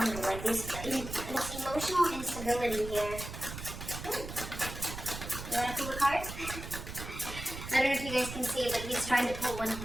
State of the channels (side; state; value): right; noise; rumble, 9 dB below the sound